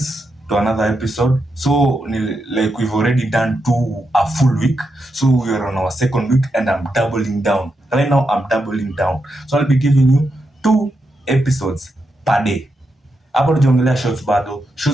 to another episode. So, like we've already done a full week, so we are on our second week, and I'm doubling down. Right now, I'm doubling down. So I'll be giving you 2 episodes per day. Hapo tujiongelea shorts bado.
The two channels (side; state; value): both; normal; correlation 0.85